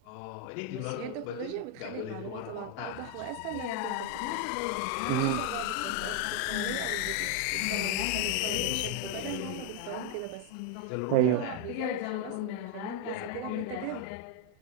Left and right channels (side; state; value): both; different; correlation 0.00